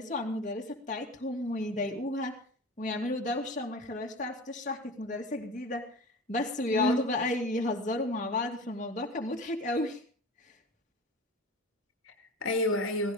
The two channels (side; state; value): both; normal; correlation 0.33